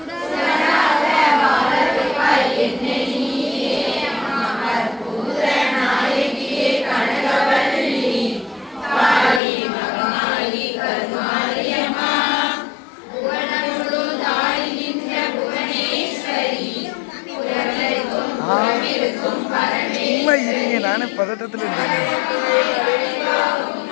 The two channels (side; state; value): right; drops out; at 9.4 s